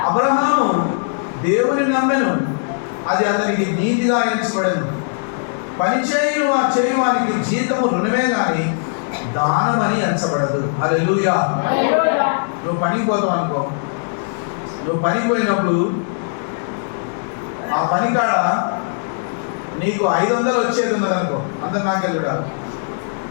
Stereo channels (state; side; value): silent; right; digital silence